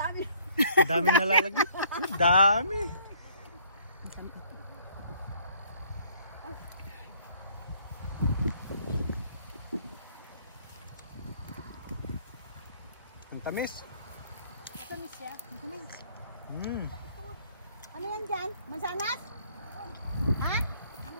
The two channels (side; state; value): both; inverted; correlation -0.61